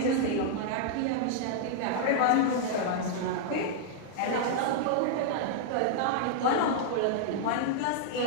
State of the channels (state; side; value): different; both; correlation -0.01